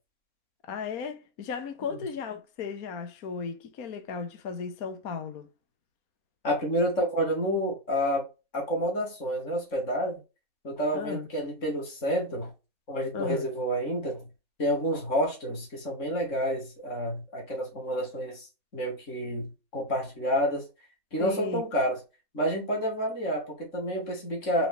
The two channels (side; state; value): right; late; 3.6 ms